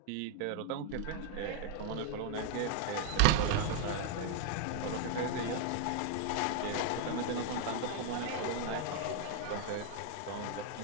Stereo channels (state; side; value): different; both; correlation 0.00